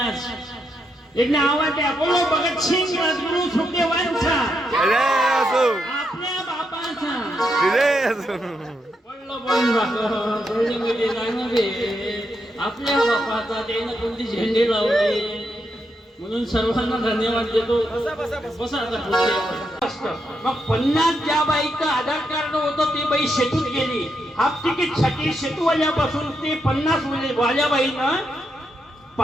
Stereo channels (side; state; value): both; normal; correlation 0.81